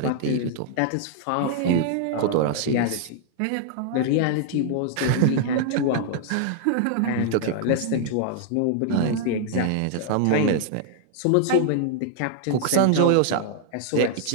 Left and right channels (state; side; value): different; both; correlation 0.00